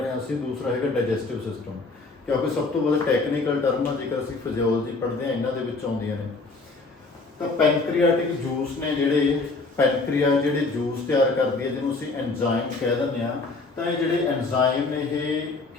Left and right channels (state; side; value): quieter; right; 3.6 dB